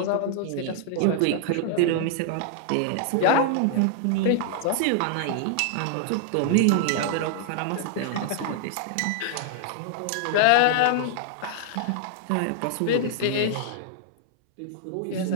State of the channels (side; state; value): both; different; correlation -0.01